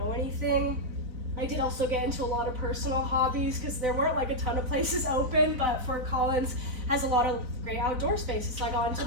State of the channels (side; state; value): left; late; 4.0 ms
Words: anything, I did also get into a lot of personal hobbies because there weren't like a ton of places open, but Fort Collins has a lot of great outdoor spaces. So I got into